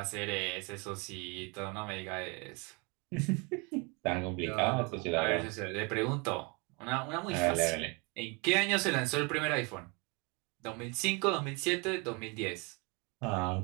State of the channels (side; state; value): left; quieter; 29.9 dB